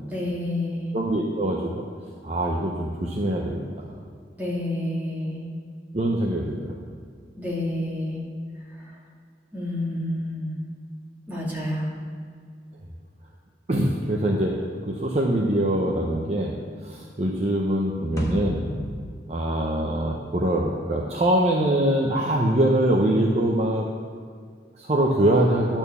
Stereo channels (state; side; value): normal; both; correlation 0.58